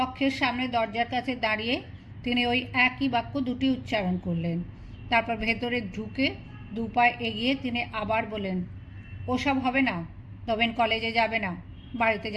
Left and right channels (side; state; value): both; identical; correlation 1.00